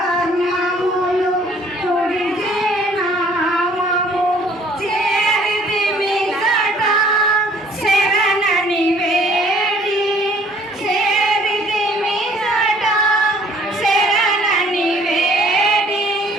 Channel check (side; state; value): both; normal; correlation 0.58